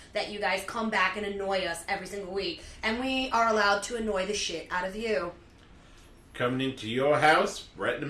that you guys come back and annoy us every single week. And we are allowed to annoy the shit out of you. Coming into your house right in the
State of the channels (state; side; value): identical; both; correlation 1.00